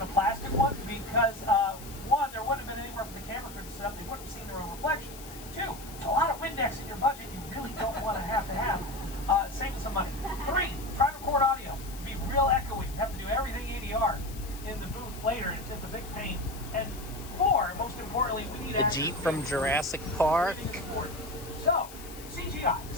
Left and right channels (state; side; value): noise; left; hiss, 16 dB below the sound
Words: a plastic one because, one, there wouldn't have been anywhere for the camera crew to set up. They wouldn't have seen their own reflection. Two, it's a lot of Windex in your budget you really don't want to have. Saving some money. Three, try to record audio. Be real echoey. You have to do everything ADR in the booth later. It's just a big pain. And four, most importantly, we need The Jeep from Jurassic Park. So, CGI. The